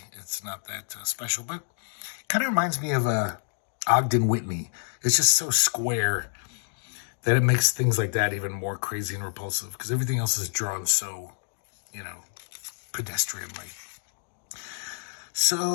it's not that special. But kind of reminds me of Ogden Whitney. It's just so square that it makes things like that even more crazy and repulsive because everything else is drawn so, pedestrianly.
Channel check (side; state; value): right; silent; digital silence